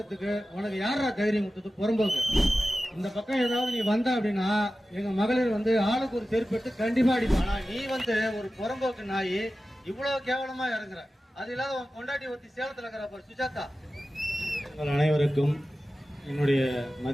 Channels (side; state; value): both; normal; correlation 0.94